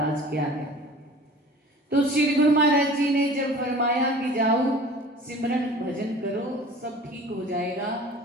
क्या है। तो श्री गुरु महाराज जी ने जब फरमाया कि जाओ सिमरन भजन करो सब ठीक हो जाएगा,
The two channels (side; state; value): both; normal; correlation 0.43